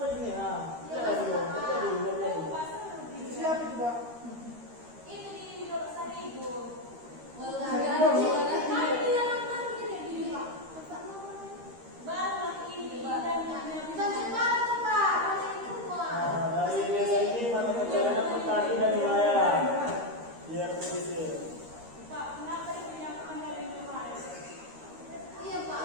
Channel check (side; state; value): left; late; 13 ms